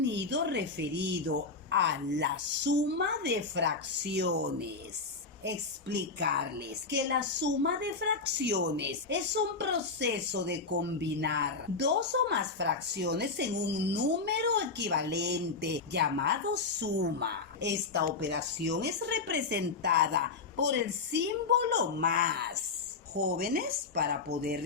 referido a la suma de fracciones. Explicarles que la suma de fracciones es un proceso de combinar dos o más fracciones en un número equivalente llamado suma. Esta operación es representada por el símbolo más. Jóvenes, para poder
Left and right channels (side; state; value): right; quieter; 4.3 dB